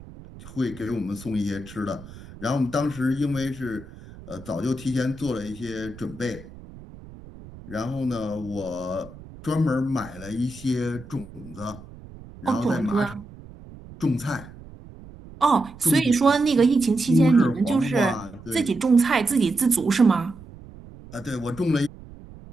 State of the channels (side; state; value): right; noise; rumble, 18 dB below the sound